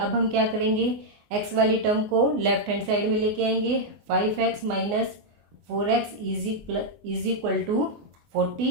हम क्या करेंगे, x वाली टर्म को लेफ्ट हैंड साइड में लेके आएंगे। 5x minus 4x is equal to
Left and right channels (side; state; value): left; late; 24 ms